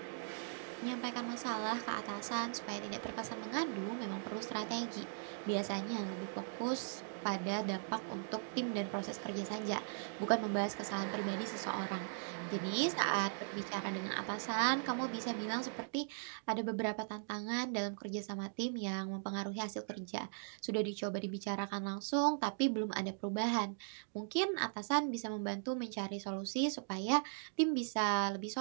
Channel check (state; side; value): silent; left; digital silence